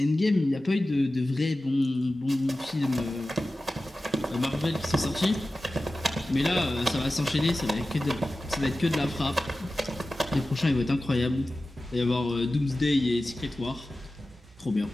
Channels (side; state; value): both; normal; correlation 0.95